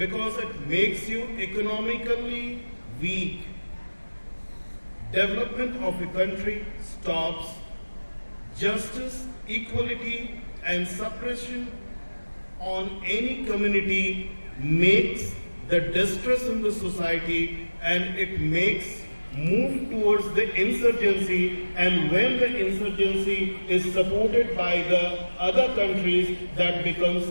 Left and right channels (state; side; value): inverted; both; correlation -1.00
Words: it makes you economically weak. Development of a country stops. Justice, equality, and suppression on any community makes the distress in the society, and it makes move towards the insurgency, and when the insurgency is supported by the other countries, that becomes